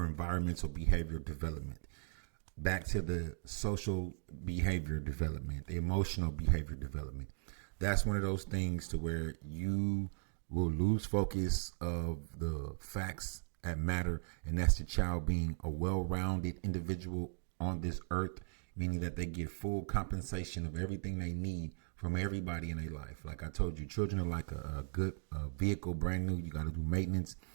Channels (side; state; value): left; silent; digital silence